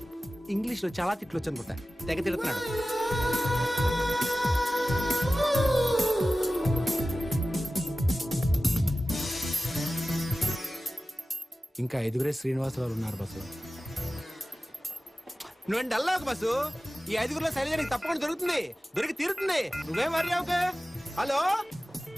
English లో చాలా తిట్లు వచ్చు అనుకుంటా, తెగ తిడుతున్నాడు. ఇంకా 5 శ్రీనివాసరావు ఉన్నారు బస్సు. నువ్వేం డల్లాకు బస్సు. ఈ 5 శైలజ నీకు తప్పకుండా దొరుకుతుంది, దొరికి తీరుతుంది. నువ్వేం వర్రీ అవ్వకు. Hello,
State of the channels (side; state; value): both; normal; correlation 0.95